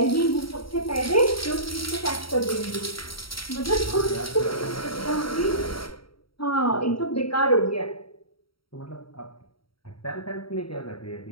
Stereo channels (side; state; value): right; late; 0.74 ms